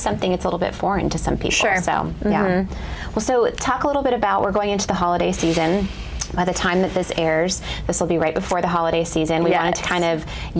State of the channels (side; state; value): both; identical; correlation 1.00